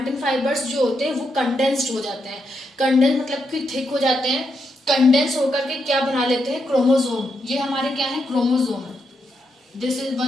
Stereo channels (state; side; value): normal; both; correlation 0.82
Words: फाइबर्स जो होते हैं वो कंडेंस्ड हो जाते हैं. कंडेंस मतलब कि थिक हो जाते हैं. कंडेंस होकर के क्या बना लेते हैं? क्रोमोसोम. ये हमारे क्या है? Chromosome. This is